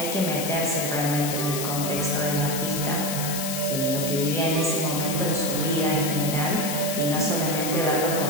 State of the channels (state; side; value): noise; left; hiss, 4 dB below the sound